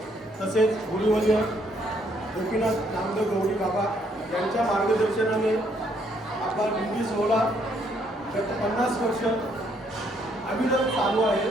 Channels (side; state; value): both; normal; correlation 0.70